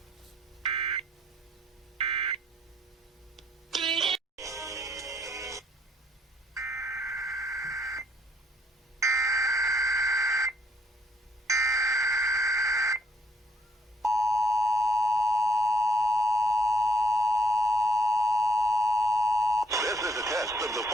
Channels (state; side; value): normal; both; correlation 0.68